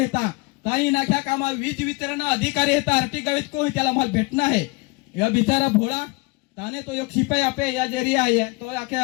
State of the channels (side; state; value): right; quieter; 26.6 dB